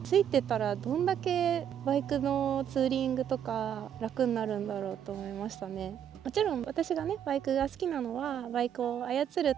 ついてたらどんだけバイクのツーリングとか楽になるんだろうと思いましたね。もちろん私がねバイクが好きなのはバイクを操る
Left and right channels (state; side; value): quieter; left; 9.3 dB